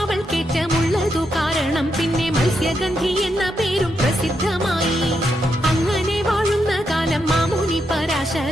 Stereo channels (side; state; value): both; normal; correlation 0.82